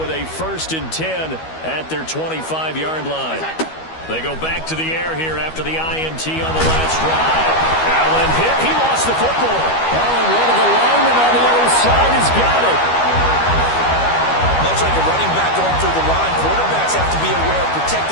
a 1st and 10 at their 25-yard line. They go back to the air here after the INT on the last drive. Allen hit. He lost the football. Allen, one of the linemen on the other side, has got it. Much like a running back going through the line, quarterbacks have to be aware of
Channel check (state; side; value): late; right; 12 ms